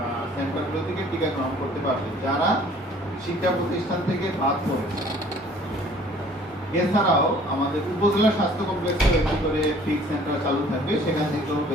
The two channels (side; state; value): both; normal; correlation 0.54